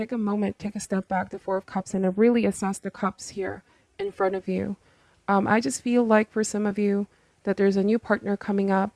a moment, take a step back, the Four of Cups, and really assess the cups here in front of you. I just feel like for some of you that there's a new partner coming up,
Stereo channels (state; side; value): identical; both; correlation 1.00